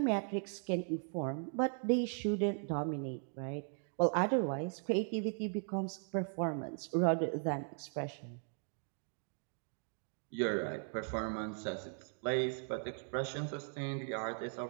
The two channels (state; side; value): silent; left; 52 dB below the other